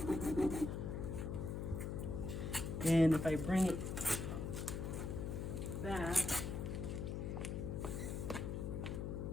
And if I bring it back,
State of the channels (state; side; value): noise; left; hum, 3 dB below the sound